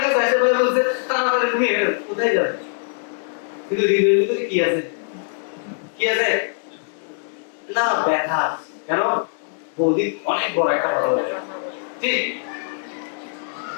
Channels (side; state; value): right; silent; 64 dB below the other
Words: কাছে আসে, ভাই বলছে তাড়াতাড়ি তুমি কোথায় যাবে? কিন্তু হৃদয়ের ভিতরে কি আছে? কি আছে না? ব্যথা। কেন? বৌদি অনেক বড় একটা কথা বলে, ঠিক?